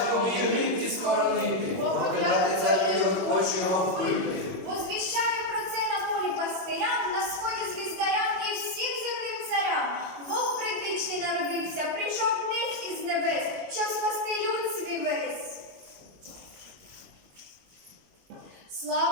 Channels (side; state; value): left; late; 21 ms